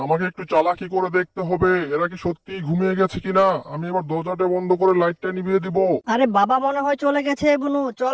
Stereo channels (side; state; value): both; identical; correlation 1.00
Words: আমাকে একটু চালাকি করে দেখতে হবে এরা কি সত্যি ঘুমিয়ে গেছে কিনা। আমি এবার দরজাটা বন্ধ করে লাইটটা নিভিয়ে দিব। আরে বাবা মনে হয় চলে গেছে বনু,